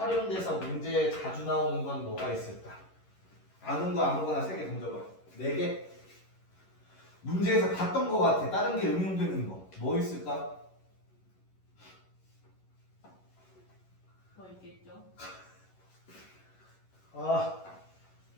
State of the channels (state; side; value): late; right; 11 ms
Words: 문제에 자주 나오는 건 뭐가 있을까? 아는 거 아무거나 3개 던져봐. 4개? 문제에서 봤던 거 같아. 다른 게 응용되는 거. 뭐 있을까? 뭐 있겠죠? 아,